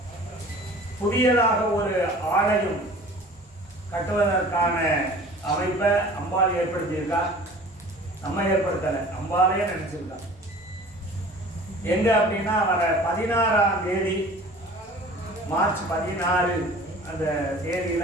புதியதாக ஒரு ஆலயம் கட்டுவதற்கான அமைப்பை அம்பாள் ஏற்படுத்தியிருக்கா. நம்ம ஏற்படுத்தலை, அம்பாளையே நினைச்சிருக்கா. எங்க அப்படின்னா வர 16ஆம் தேதி மார்ச் 16 அந்த தேதியில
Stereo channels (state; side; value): normal; both; correlation 0.45